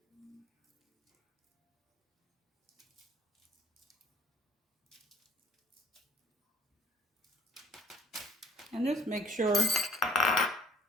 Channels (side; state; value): both; normal; correlation 0.55